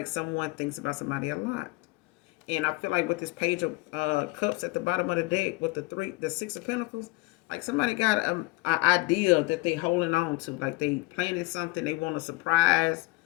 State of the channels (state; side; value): quieter; right; 22.3 dB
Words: someone thinks about somebody a lot. And I feel like with this Page of Cups at the bottom of the deck with the Six of Pentacles, like somebody got an idea that they holding on to. Like they planning something, they want to surprise